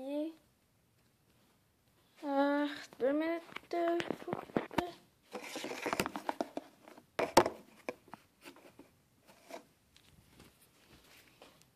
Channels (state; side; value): identical; both; correlation 1.00